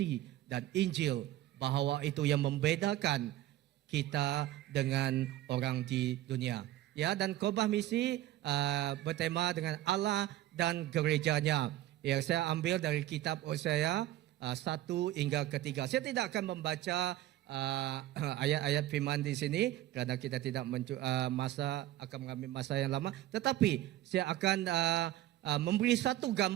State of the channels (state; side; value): quieter; left; 14.6 dB